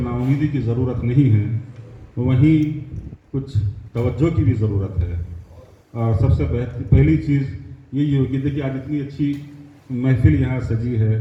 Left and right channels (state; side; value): identical; both; correlation 1.00